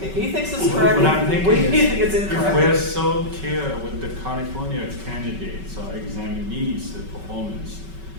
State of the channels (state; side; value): late; left; 5.3 ms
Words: he thinks it's correct. What I'm thinking We is, think it's if we're incorrect. so clear with the California candidates or examinees, the performance,